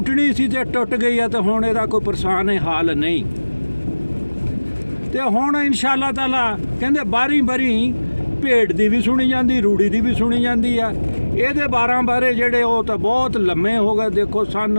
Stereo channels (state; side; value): inverted; both; correlation -1.00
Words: ਸੀ ਤੇ ਟੁੱਟ ਗਈ ਆ, ਤੇ ਹੁਣ ਇਹਦਾ ਕੋਈ ਪਰੇਸ਼ਾਨ ਹਾਲ ਨਹੀਂ। ਤੇ ਹੁਣ ਇਨਸ਼ਾ ਅੱਲਾਹ ਤਾਲਾ ਕਹਿੰਦੇ ਬਾਰੀ ਭੇਡ ਦੀ ਵੀ ਸੁਣੀ ਜਾਂਦੀ, ਰੂੜੀ ਦੀ ਵੀ ਸੁਣੀ ਜਾਂਦੀ ਆ। ਇਹਦੇ 12 ਬਾਰੇ ਜਿਹੜੇ ਉਹ ਤਾਂ ਬਹੁਤ ਲੰਮੇ ਹੋ ਗਏ। ਦੇਖੋ